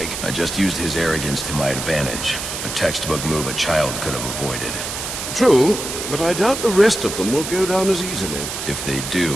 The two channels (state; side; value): noise; right; hiss, 6 dB below the sound